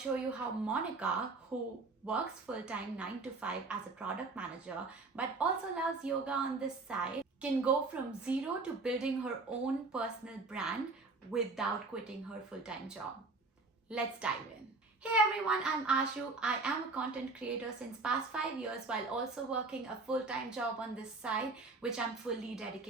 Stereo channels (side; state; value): left; quieter; 3.6 dB